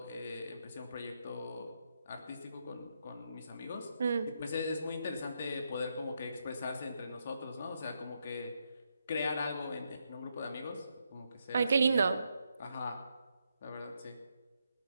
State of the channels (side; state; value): both; inverted; correlation -0.81